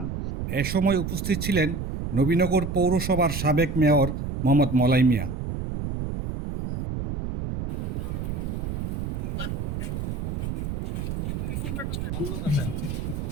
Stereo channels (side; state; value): right; noise; rumble, 3 dB below the sound